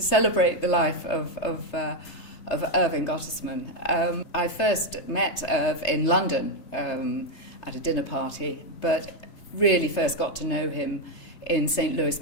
the life of Irving Gottesman. I first met Irv in London at a dinner party, but really first got to know him in St. Louis,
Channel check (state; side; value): late; right; 3.3 ms